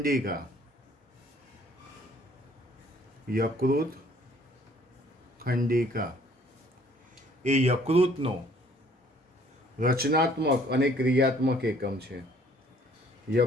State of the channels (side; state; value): both; normal; correlation 0.59